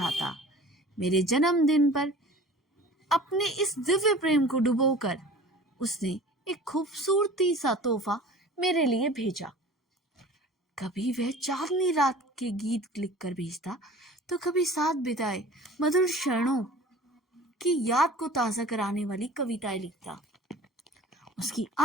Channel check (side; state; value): both; normal; correlation 0.43